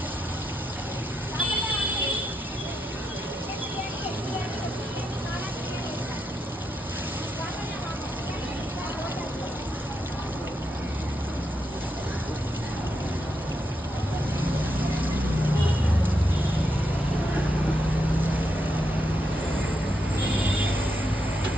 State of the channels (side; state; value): both; normal; correlation 0.82